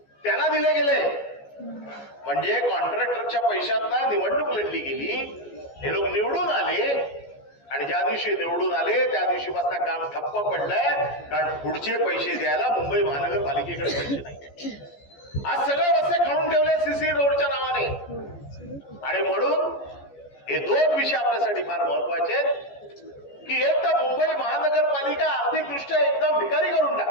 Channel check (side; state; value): right; late; 14 ms